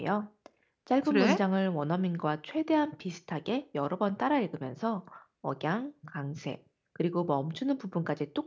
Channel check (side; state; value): both; identical; correlation 1.00